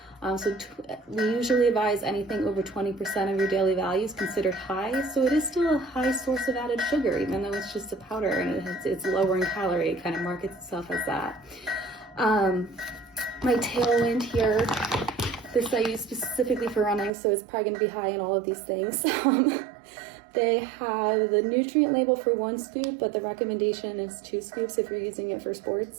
We usually advise anything over 20% of your daily value is considered high. So it is still a high source of added sugar, even though it's just a powder and it's lower in calorie. It kind of markets itself as that. My Tailwind here, this I use specifically for running, so it's probably going to be high in all of these things. They have the nutrient label for 1 scoop, but the recommendation is 2 scoops if you're using it for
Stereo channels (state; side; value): drops out; left; at 17.1 s